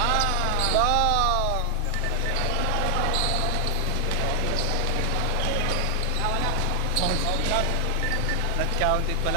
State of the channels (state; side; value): different; both; correlation 0.00